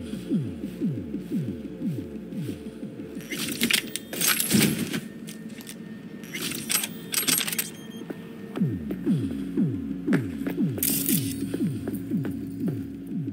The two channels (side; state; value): both; identical; correlation 1.00